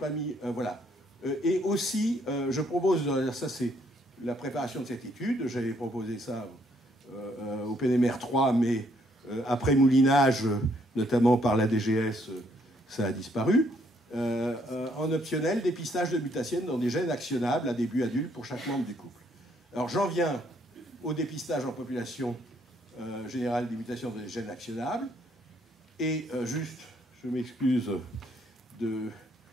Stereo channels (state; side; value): normal; both; correlation 0.69